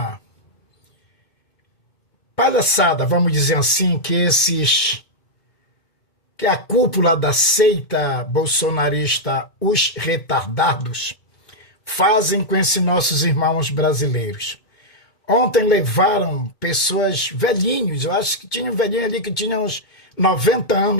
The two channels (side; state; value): right; late; 2.2 ms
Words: palhaçada, vamos dizer assim, que a cúpula da seita bolsonarista, os retardados, fazem com esses nossos irmãos brasileiros. Ontem levaram pessoas velhinhos, eu acho que tinha um velhinho ali que tinha uns 90